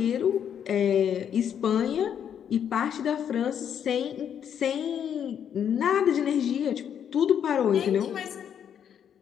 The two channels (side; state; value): right; quieter; 8.7 dB